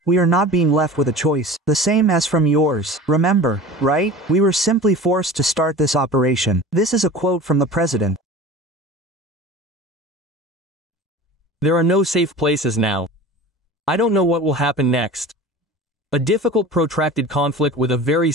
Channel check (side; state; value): both; normal; correlation 0.37